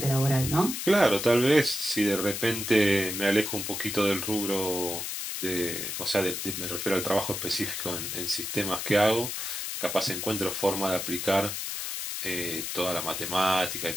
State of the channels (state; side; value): noise; left; hiss, 4 dB below the sound